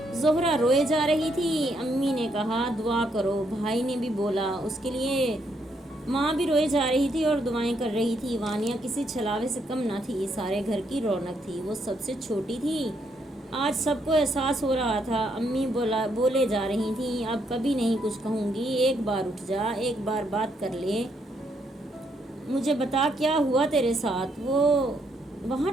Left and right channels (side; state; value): both; normal; correlation 0.75